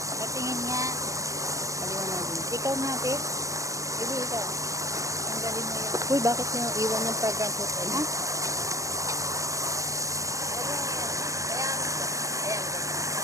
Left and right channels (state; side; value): late; left; 0.16 ms